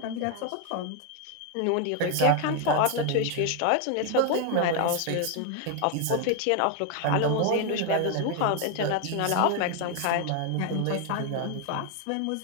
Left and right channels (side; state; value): both; different; correlation 0.01